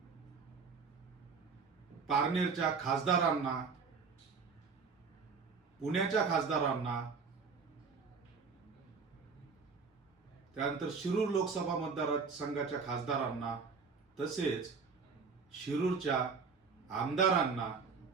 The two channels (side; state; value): left; quieter; 5.2 dB